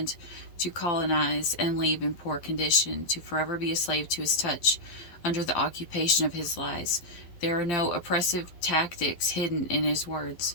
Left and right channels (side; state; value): right; late; 12 ms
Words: to colonize and leave in poor condition, to forever be a slave to his touch, under the occupation of his lies. There are no oppressive tactics hidden in his